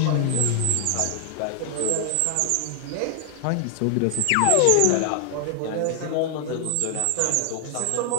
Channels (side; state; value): both; different; correlation 0.00